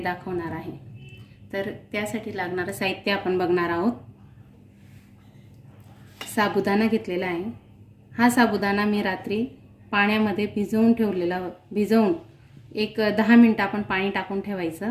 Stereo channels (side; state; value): both; identical; correlation 1.00